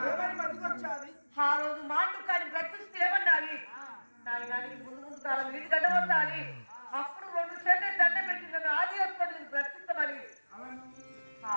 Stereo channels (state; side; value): inverted; both; correlation -1.00